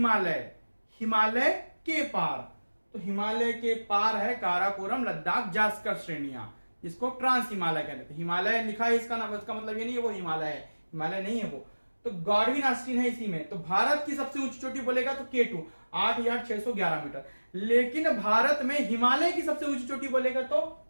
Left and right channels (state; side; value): inverted; both; correlation -1.00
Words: हिमालय के पार। तो हिमालय के पार है काराकोरम, लद्दाख, जास्कर श्रेणियां, इसको ट्रांस हिमालय कहते हैं। हिमालय लिखा है इसका नाम, इसका मतलब ये नहीं है वो हिमालय है, हिमालय नहीं है वो। तो गार्डविन आइलैंड है इसी में। तो भारत की सबसे ऊंची चोटी बोलेगा तो K2 8,611 मीटर। लेकिन भारत में हिमालय की सबसे ऊंची चोटी बोलेगा तो